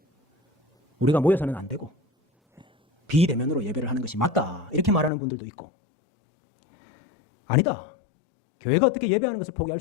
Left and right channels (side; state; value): right; drops out; at 5.1 s